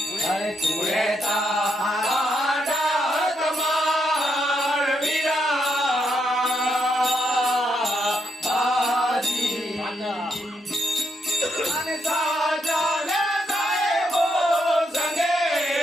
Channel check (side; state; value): both; normal; correlation 0.78